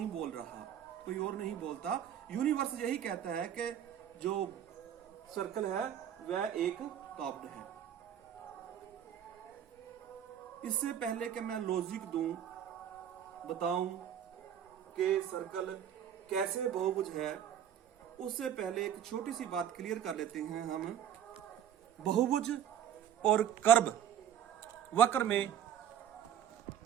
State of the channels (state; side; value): quieter; left; 9.6 dB